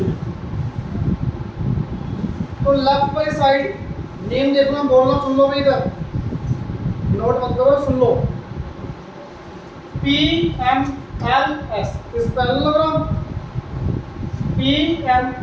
में। तो लेफ्ट वाली साइड नेम देखना, बोलना सुन लो भाई, इधर नोट मत करो, सुन लो। PMLS इस पैरेललोग्राम,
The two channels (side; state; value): both; identical; correlation 1.00